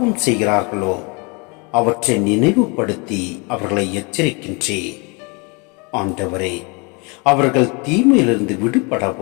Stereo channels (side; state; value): right; quieter; 30.7 dB